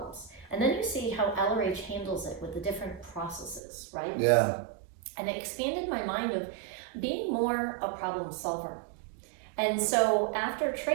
And then you see how LRH handles it with the different processes, right? Yeah. And it expanded my mind of being more a problem solver. And so after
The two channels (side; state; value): left; drops out; at 3.6 s